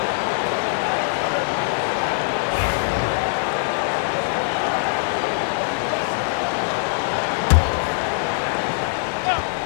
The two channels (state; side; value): silent; right; digital silence